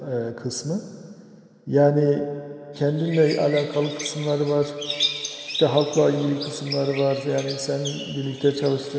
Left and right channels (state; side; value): identical; both; correlation 1.00